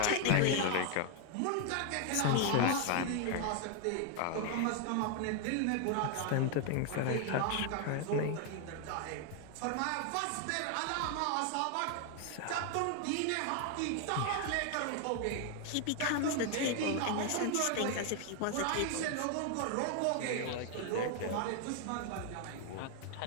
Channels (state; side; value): different; both; correlation 0.00